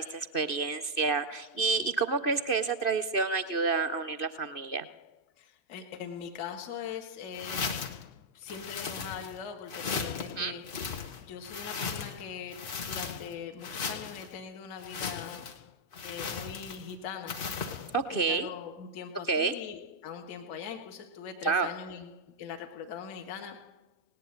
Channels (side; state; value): right; late; 2.6 ms